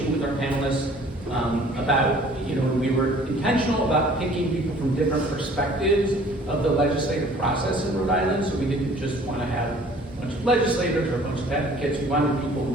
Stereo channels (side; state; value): both; normal; correlation 0.52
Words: with our panelists about, we were intentional about picking people from different perspectives of the legislative process in Rhode Island, so we didn't just want to have a bunch of legislators or a bunch of advocates. We wanted people